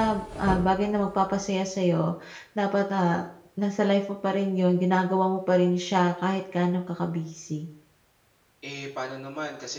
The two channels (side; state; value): both; identical; correlation 1.00